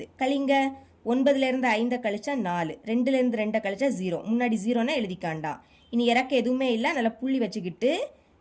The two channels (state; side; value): identical; both; correlation 1.00